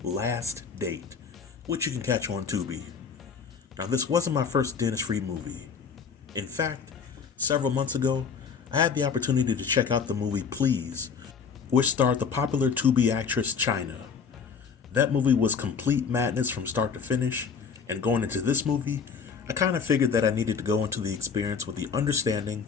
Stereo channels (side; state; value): right; quieter; 6.0 dB